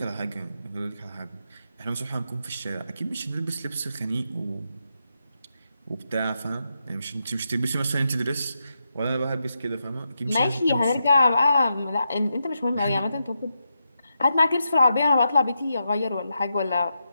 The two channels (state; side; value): inverted; both; correlation -0.85